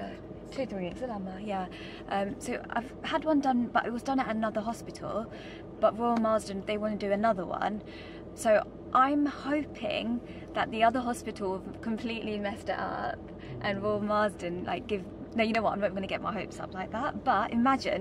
2-3 weeks ago, yeah. So I've had one done, but it was done at another hospital, but Royal Marsden, they want to do another one. So I'm hoping that the other hospital completely messed it up and Royal Marsden no, you know what, I'm not going to get my hopes up like that, but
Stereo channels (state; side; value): identical; both; correlation 1.00